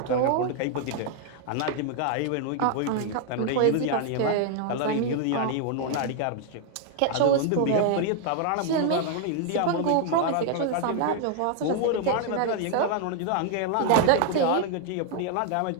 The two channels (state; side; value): different; both; correlation 0.00